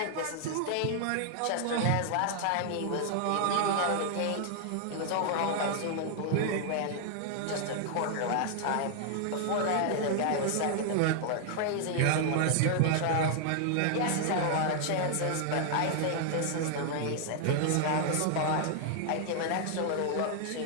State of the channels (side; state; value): both; different; correlation 0.00